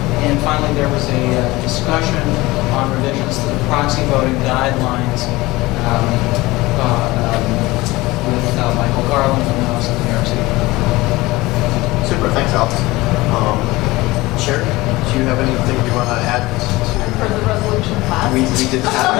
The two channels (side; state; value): right; quieter; 20.3 dB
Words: And finally, there was a discussion on revisions to the proxy voting guidelines with Michael Garland from the Office of the New York City. Super. Thanks, Alex. Sherry, do you have anything you want to add For the resolution passed. We did